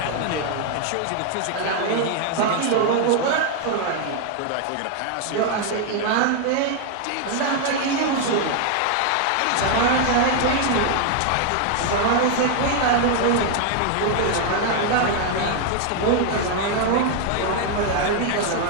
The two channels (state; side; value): different; both; correlation 0.00